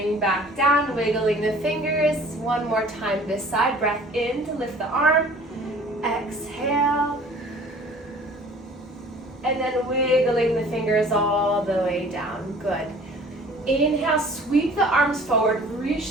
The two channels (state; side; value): normal; both; correlation 0.50